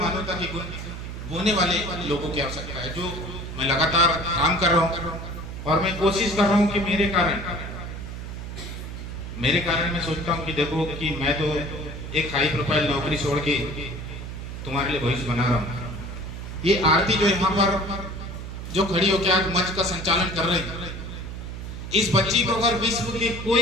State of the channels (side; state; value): right; noise; hum, 8 dB below the sound